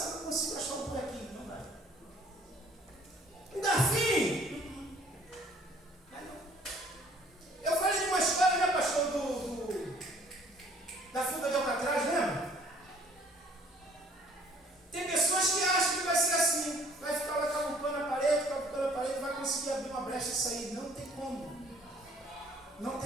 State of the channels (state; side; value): normal; both; correlation 0.57